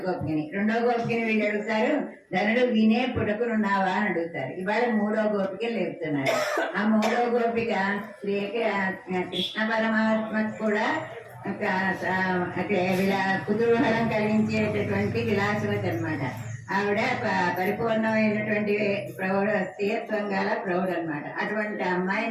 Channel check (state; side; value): identical; both; correlation 1.00